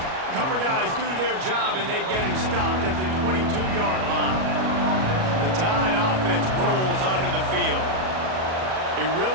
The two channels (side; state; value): left; late; 37 ms